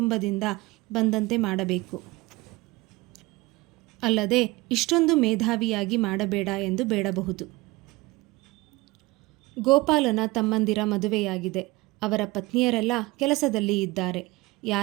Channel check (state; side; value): quieter; left; 21.9 dB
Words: ಬಂದಂತೆ ಮಾಡಬೇಕು. ಅಲ್ಲದೆ ಇಷ್ಟೊಂದು ಮೇಧಾವಿಯಾಗಿ ಮಾಡಬೇಡ ಎಂದು ಬೇಡಬಹುದು. ಗೋಪಾಲನ ತಮ್ಮಂದಿರ ಮದುವೆಯಾಗಿದೆ. ಅವರ ಪತ್ನಿಯರೆಲ್ಲ ಕೆಲಸದಲ್ಲಿ ಇದ್ದಾರೆ.